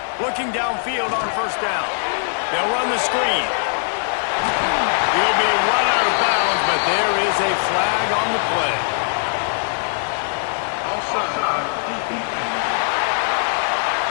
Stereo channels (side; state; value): right; silent; digital silence